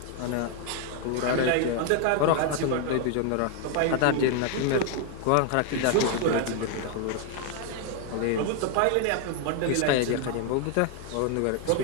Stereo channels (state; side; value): different; both; correlation 0.01